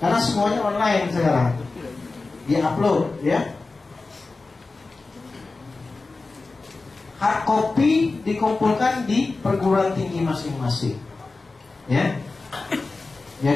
semuanya online sekarang. Di-upload, ya. Hard copy dikumpulkan di perguruan tinggi masing-masing, ya.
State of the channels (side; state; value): right; quieter; 3.7 dB